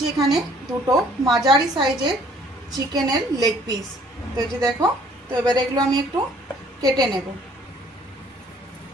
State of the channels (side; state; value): both; normal; correlation 0.59